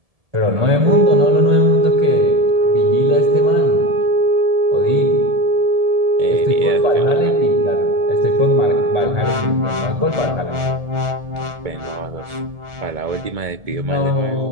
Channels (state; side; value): late; left; 1.7 ms